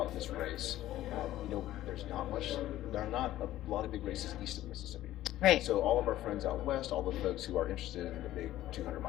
this race, there are not a lot of big races east of Mississippi. Right. So all of our friends out west, all the folks who are interested in the big 200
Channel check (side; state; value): right; quieter; 14.3 dB